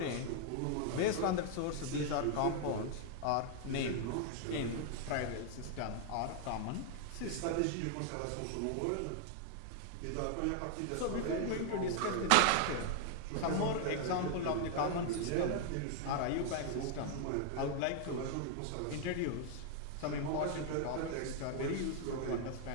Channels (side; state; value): both; different; correlation 0.00